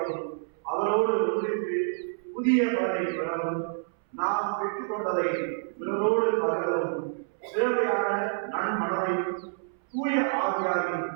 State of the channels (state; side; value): silent; left; 59 dB below the other